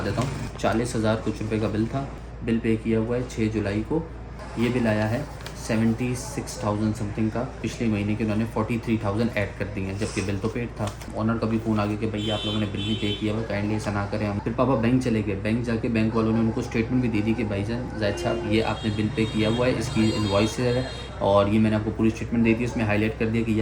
देता हूँ। 40,000 कुछ रुपए का बिल था। बिल पे किया हुआ है 6 जुलाई को। ये बिल आया है 76,000 समथिंग का। पिछले महीने के उन्होंने 43,000 ऐड कर दिए हैं, जबकि बिल तो पेड था। ऑनर का भी फ़ोन आ गया कि भैया आप लोगों ने बिल नहीं पे किया हुआ, काइंडली ऐसा ना करें। हम फिर पापा बैंक चले गए। बैंक जाके बैंक वालों ने उनको स्टेटमेंट भी दे दी कि भाईजान जायद साहब, ये आपने बिल पे किया हुआ है, इसकी इनवॉइस है और ये मैंने आपको पूरी स्टेटमेंट दे दी। इसमें हाईलाइट कर दिया कि ये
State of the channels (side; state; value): both; identical; correlation 1.00